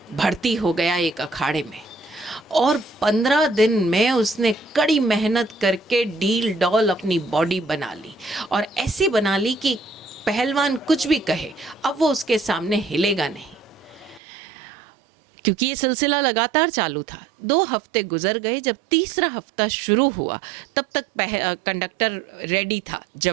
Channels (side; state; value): left; drops out; at 14.2 s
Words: भर्ती हो गया एक अखाड़े में, और 15 दिन में उसने कड़ी मेहनत करके डील डॉल अपनी बॉडी बना ली, और ऐसे बना ली कि पहलवान कुछ भी कहे अब वो उसके सामने हिलेगा नहीं। क्योंकि ये सिलसिला लगातार चालू था। 2 हफ्ते गुजर गए। जब तीसरा हफ्ता शुरू हुआ तब तक कंडक्टर रेडी था